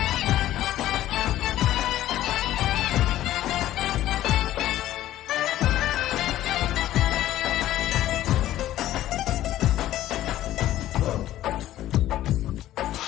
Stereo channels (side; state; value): right; quieter; 13.7 dB